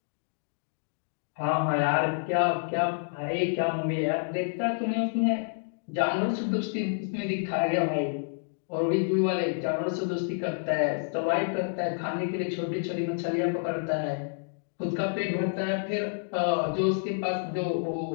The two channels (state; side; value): silent; right; digital silence